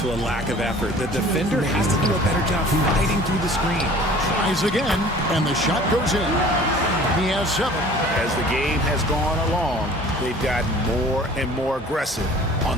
to a lack of effort. The defender has to do a better job fighting through the screen. Tries again, and the shot goes in. He has 7. As the game has gone along, they've gotten more and more aggressive on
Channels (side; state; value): both; normal; correlation 0.47